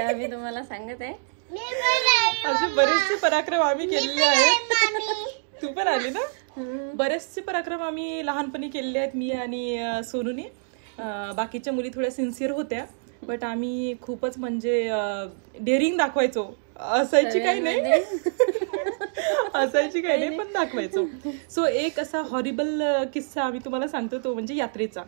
तुम्हाला सांगत आहे. असे बरेचसे पराक्रम आम्ही केलेले आहेत. तू पण आली ना. बरेचसे पराक्रम आम्ही लहानपणी केलेले आहेत, मी आणि सोनूनी. बाकीच्या मुली थोड्या सिन्सिअर होत्या, बट आम्ही खूपच म्हणजे डेअरिंग दाखवायचो. असायची काही नाही पण दाखवायचो. सो एक असा हॉरिबल किस्सा आम्ही तुम्हाला सांगतो, तो म्हणजे यात्रेचा.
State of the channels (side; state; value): left; silent; digital silence